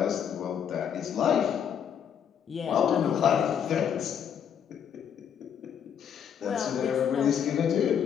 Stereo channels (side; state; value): right; quieter; 8.3 dB